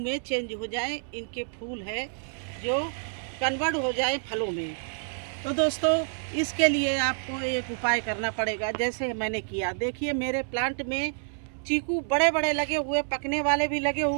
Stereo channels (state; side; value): silent; left; 59 dB below the other